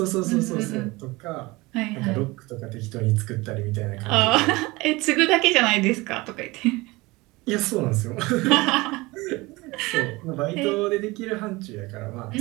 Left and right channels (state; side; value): quieter; left; 22.3 dB